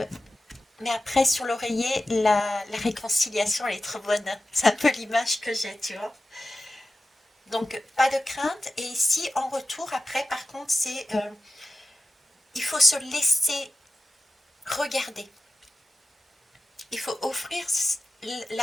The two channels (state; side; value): normal; both; correlation 0.93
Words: après sur l'oreiller, la réconciliation elle est trop bonne, c'est un peu l'image que j'ai, tu vois. Donc pas de crainte, et ici en retour après par contre c'est, il faut se laisser regarder, il faut offrir